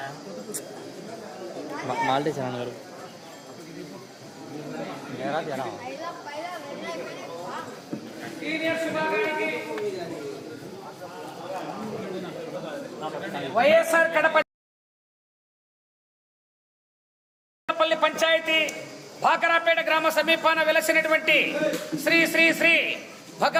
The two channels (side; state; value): both; identical; correlation 1.00